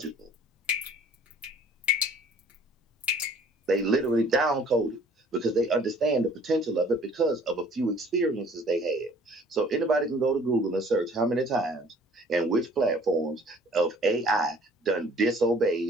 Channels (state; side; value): normal; both; correlation 0.54